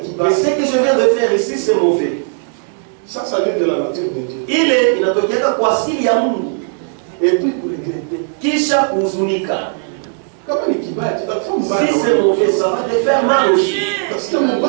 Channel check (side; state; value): left; silent; 68 dB below the other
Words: je viens de faire ici, c'est mauvais. Ça vient de la nature de Dieu. Et puis pour regretter. Si c'est mauvais, ça va te faire mal aussi. Parce que mon